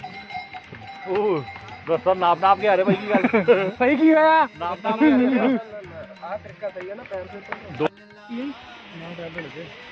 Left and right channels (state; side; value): identical; both; correlation 1.00